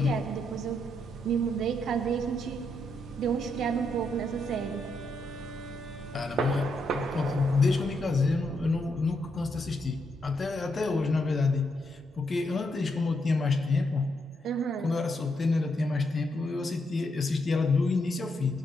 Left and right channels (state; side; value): normal; both; correlation 0.79